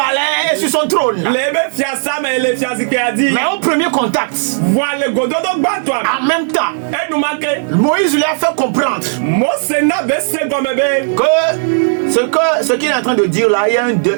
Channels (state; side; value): silent; left; digital silence